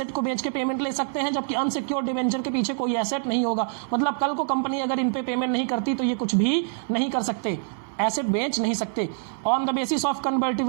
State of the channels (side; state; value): left; silent; 61 dB below the other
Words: को बेच के पेमेंट ले सकते हैं, जबकि अनसिक्योर्ड डिवेंचर के पीछे कोई एसेट नहीं होगा। मतलब कल को कंपनी अगर इन पे पेमेंट नहीं करती तो ये कुछ भी नहीं कर सकते, एसेट बेच नहीं सकते। On the basis of